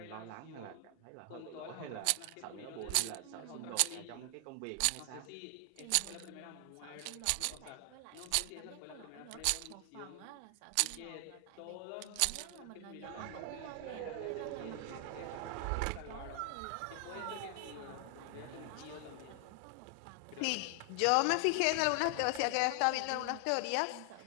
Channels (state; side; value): different; both; correlation 0.00